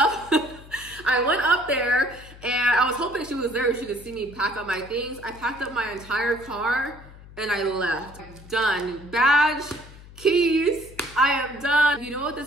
I went up there and I was hoping she was there. She could see me pack up my things. I packed up my entire car and I left. Done. Badge, keys, I am done. You know what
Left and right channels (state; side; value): noise; left; hum, 19 dB below the sound